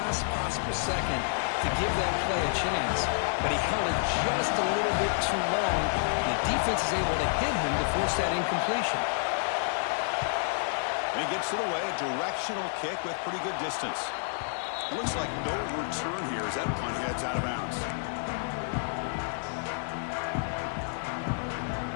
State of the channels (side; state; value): right; silent; digital silence